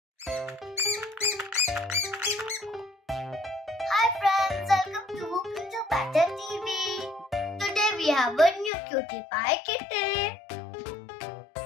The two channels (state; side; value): drops out; right; at 8.7 s